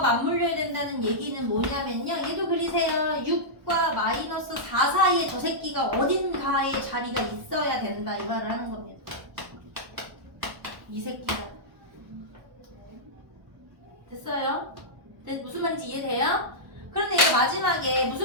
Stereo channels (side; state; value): left; late; 1.1 ms